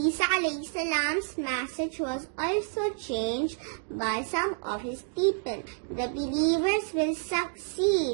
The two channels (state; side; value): silent; left; digital silence